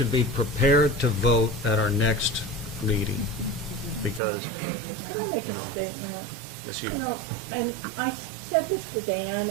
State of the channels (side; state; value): left; drops out; at 4.2 s